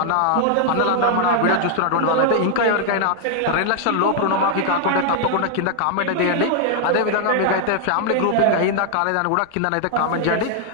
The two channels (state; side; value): different; both; correlation 0.00